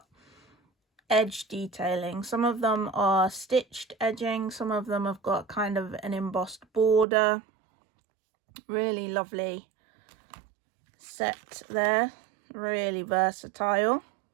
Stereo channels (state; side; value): drops out; left; at 7.1 s